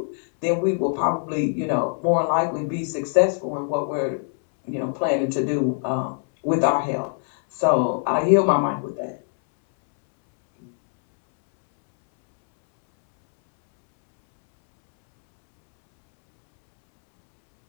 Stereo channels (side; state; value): right; silent; 64 dB below the other